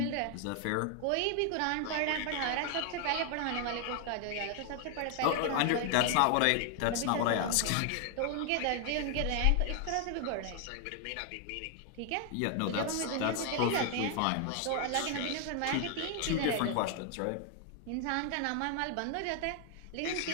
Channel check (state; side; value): different; both; correlation 0.00